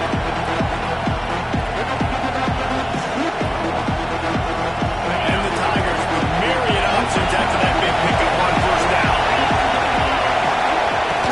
And the Tigers with myriad options after that big pickup on first down.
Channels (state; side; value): identical; both; correlation 1.00